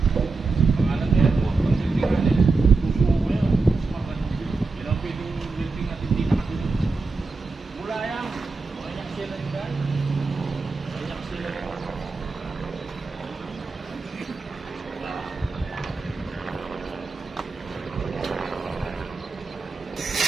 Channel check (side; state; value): left; quieter; 3.9 dB